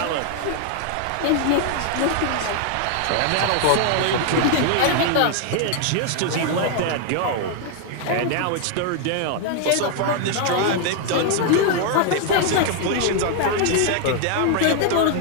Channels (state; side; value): different; both; correlation 0.00